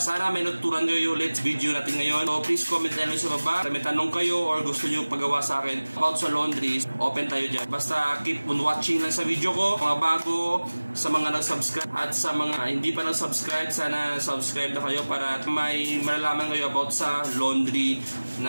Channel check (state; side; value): inverted; both; correlation -1.00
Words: Sana may natutunan nyo yung ulit video natin ngayon. So please comment tayo sa baba. May tanong kayo or gusto nyo pagawa sa akin about sa laundry, open tayo dyan. Basta keep on watching lang sa video ko. Mga bago, sa mga nag-subscribe at sa mga hindi pa nag-subscribe, sana subscribe na kayo para may malalaman kayo about sa laundry